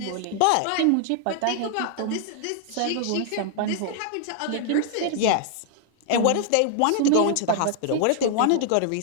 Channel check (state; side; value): different; both; correlation 0.00